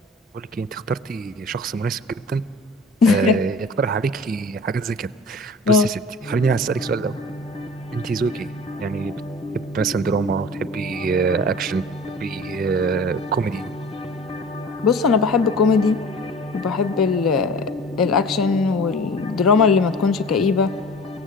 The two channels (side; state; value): both; normal; correlation 0.41